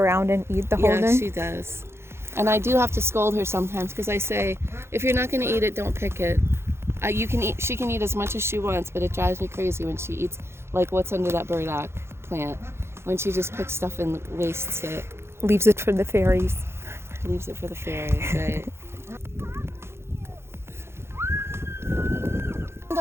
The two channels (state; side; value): late; left; 0.12 ms